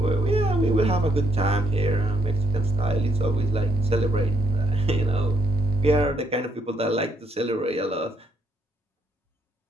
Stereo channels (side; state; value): both; normal; correlation 0.73